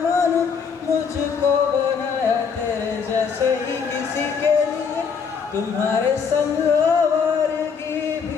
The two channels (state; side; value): quieter; right; 6.1 dB